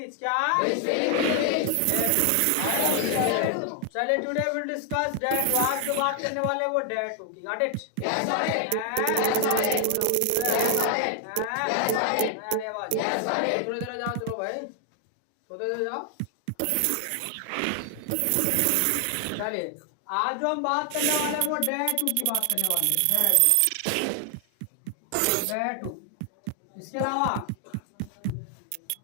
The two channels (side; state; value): both; different; correlation 0.00